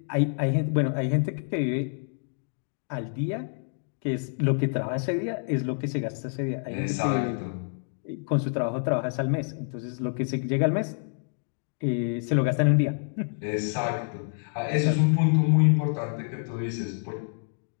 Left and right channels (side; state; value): right; silent; 60 dB below the other